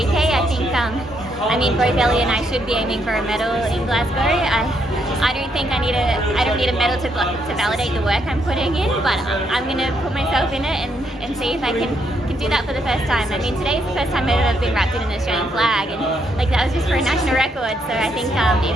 I think, I mean, both Ellie and I should be aiming for a medal in Glasgow. I don't think I don't need a medal to validate the work I'm putting in, but I'm going to put myself in it and see if I can do that for the first time. I mean, today's the first time I've ever been wrapped in an Australian flag, and like that was just for a national record. So I think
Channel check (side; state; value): both; normal; correlation 0.75